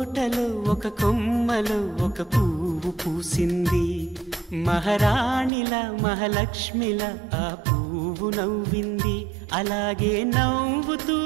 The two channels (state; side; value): drops out; left; at 5.5 s